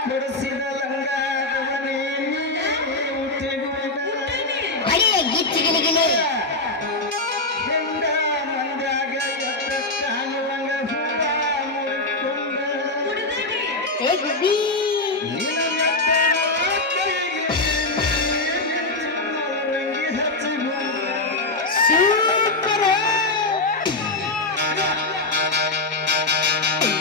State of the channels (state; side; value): quieter; right; 3.0 dB